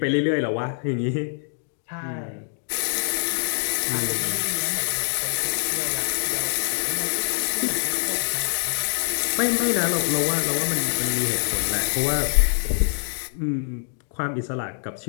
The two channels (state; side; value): silent; right; digital silence